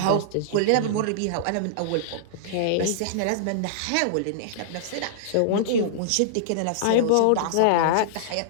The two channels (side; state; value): both; different; correlation -0.02